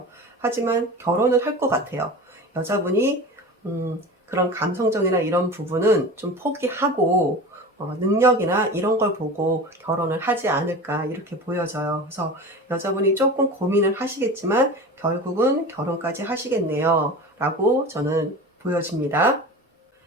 하지만 결혼을 할 것 같아요. 여자분이 그런 감성적이나 이런 부분은 좀 포기하고 능력이나 이런 걸 보고 결혼을 하지 않을까 이렇게 보여져요. 그래서 여자분이 조금 고민을 하시겠지만 결국은 결혼까지 하시겠네요 라고 저는 보여집니다.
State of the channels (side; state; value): both; normal; correlation 0.33